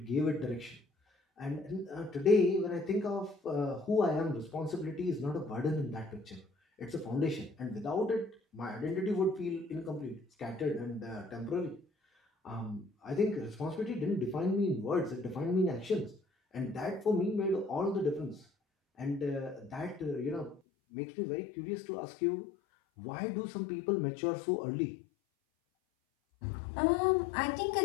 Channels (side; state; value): right; drops out; at 20.6 s